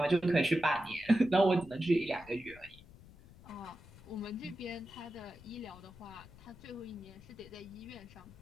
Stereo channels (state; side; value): noise; left; rumble, 21 dB below the sound